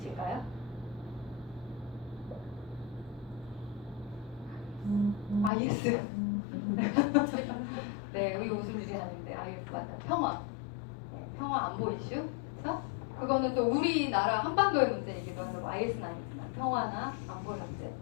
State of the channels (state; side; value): drops out; right; at 5.5 s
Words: IS. 네, 여기 무슨 일이 아닌데 IS 맞아요. 평화. 네, 평화 안보 이슈. 그렇죠? 그거는 또 우리나라 한반도의 문제이기도 하고, IS는 아니지만 평화나 안보 문제.